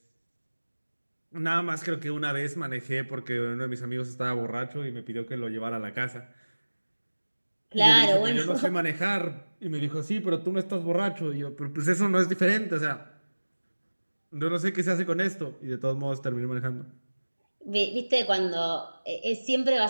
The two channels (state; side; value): inverted; both; correlation -1.00